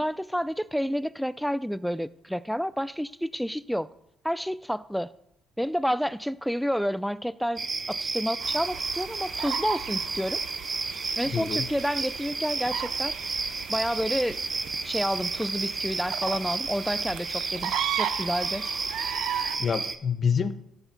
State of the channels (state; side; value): normal; both; correlation 0.90